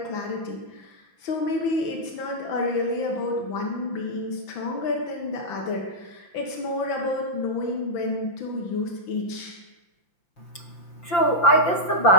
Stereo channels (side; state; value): right; late; 5.8 ms